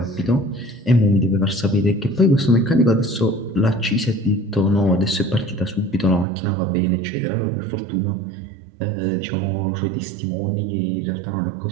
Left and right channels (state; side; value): drops out; left; at 6.2 s